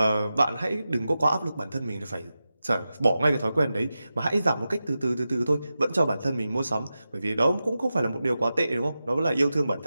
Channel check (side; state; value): both; inverted; correlation -0.92